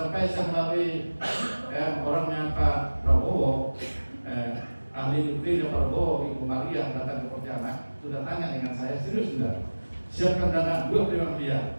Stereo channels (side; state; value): both; inverted; correlation -1.00